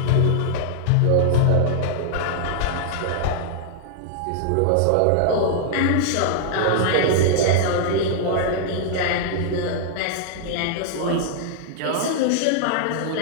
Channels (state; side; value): different; both; correlation -0.01